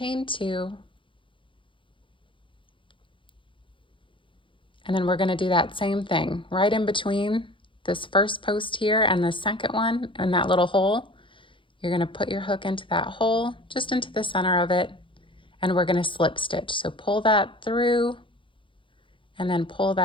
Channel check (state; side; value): late; right; 0.25 ms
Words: 2, and then we're going to do that same thing right in between this first post here and the second one in that little hole. You're going to put your hook into that hole, just into the center of it, and we're going to slip stitch. So pull that through and then pull